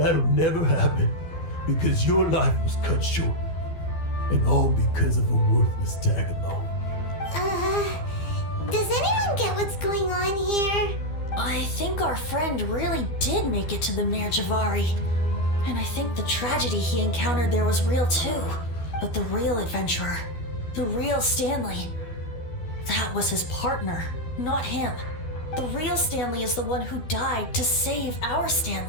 never happen because your life was cut short, and all because of a worthless tag-along. Does anyone get what's going on here? I think our friend really did make it to the Mare Javari. And I think the tragedy he encountered there was real too. But the real adventurer, the real Stanley, that was his partner, not him. the real Stanley is the one who died to save our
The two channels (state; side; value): late; right; 12 ms